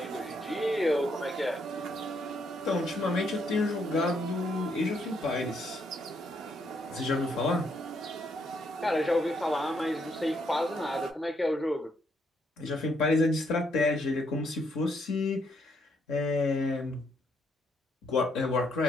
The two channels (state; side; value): normal; both; correlation 0.74